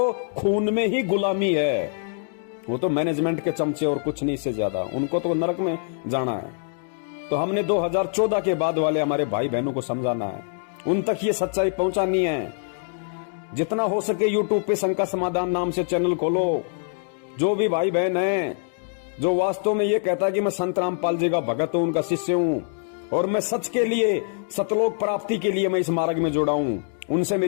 खून में ही गुलामी है, वो तो मैनेजमेंट के चमचे और कुछ नहीं से ज्यादा, उनको तो नरक में जाना है। तो हमने 2014 के बाद वाले हमारे भाई बहनों को समझाना है, उन तक ये सच्चाई पहुंचानी है। जितना हो सके यूट्यूब पे शंका समाधान नाम से चैनल खोलो। जो भी भाई बहन है जो वास्तव में ये कहता है कि मैं संत रामपाल जी का भगत हूं, उनका शिष्य हूं, और मैं सच के लिए, सतलोक प्राप्ति के लिए मैं इस मार्ग में जुड़ा हूं, उनसे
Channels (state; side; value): silent; right; digital silence